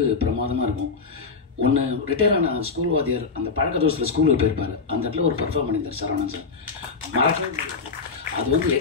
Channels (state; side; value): quieter; right; 4.8 dB